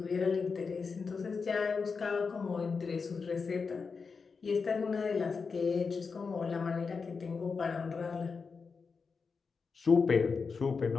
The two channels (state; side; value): quieter; right; 5.1 dB